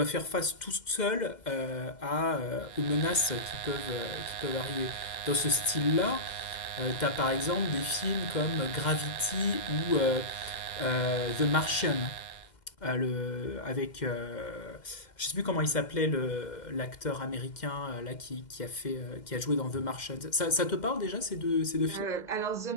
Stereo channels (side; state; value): right; late; 2.1 ms